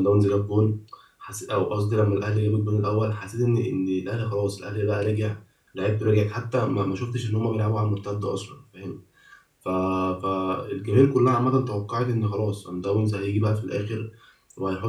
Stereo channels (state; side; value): identical; both; correlation 1.00